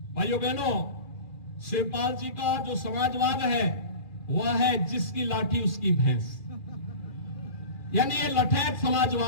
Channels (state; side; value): late; right; 2.4 ms